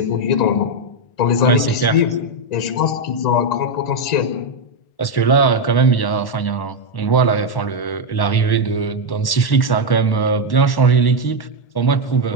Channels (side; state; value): right; late; 1.1 ms